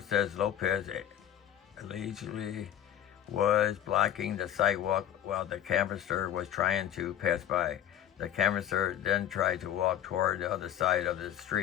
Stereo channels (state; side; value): quieter; right; 10.9 dB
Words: says Lopez allegedly was blocking the sidewalk while the canvasser was trying to pass by. The canvasser then tried to walk toward the other side of the